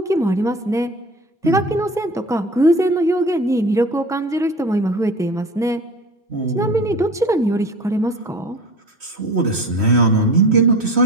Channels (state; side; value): normal; both; correlation 0.37